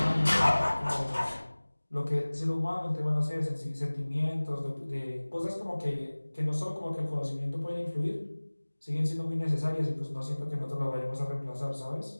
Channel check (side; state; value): both; inverted; correlation -1.00